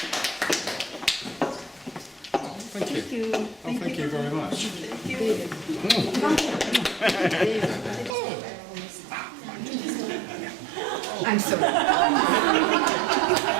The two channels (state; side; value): drops out; left; at 8.2 s